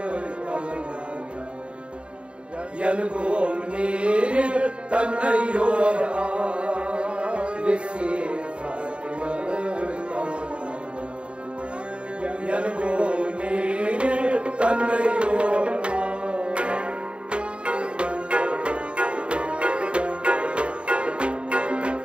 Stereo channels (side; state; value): left; late; 0.056 ms